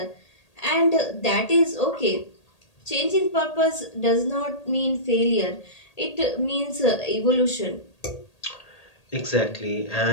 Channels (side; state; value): right; late; 1.8 ms